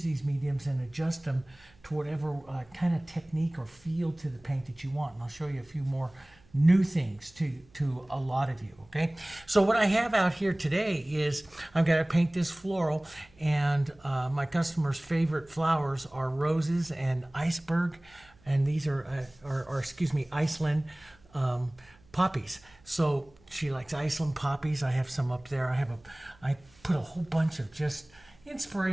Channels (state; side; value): noise; right; hum, 29 dB below the sound